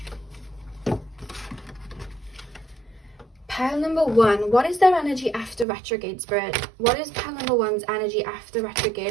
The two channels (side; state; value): left; drops out; at 5.7 s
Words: Pile number 1. What is their energy after retrograde, spirit? What is pile number 1's energy after